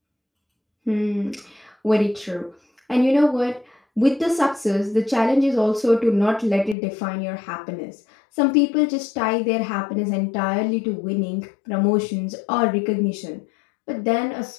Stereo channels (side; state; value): right; drops out; at 6.8 s